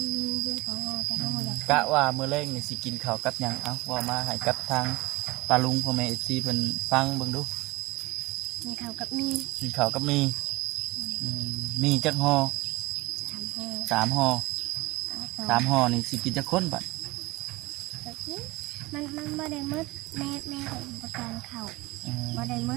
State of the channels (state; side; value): quieter; left; 21.3 dB